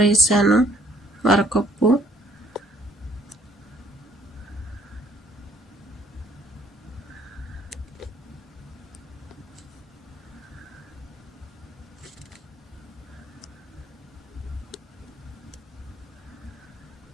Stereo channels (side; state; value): both; normal; correlation 0.61